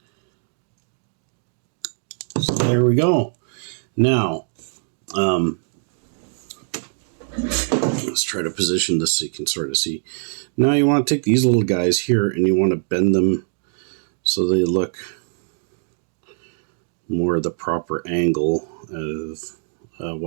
So there we go. Now, let's try to position this so you can sort of see. Now you want to take these little guys here and you want to bend them so they look more the proper angle of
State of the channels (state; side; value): silent; left; digital silence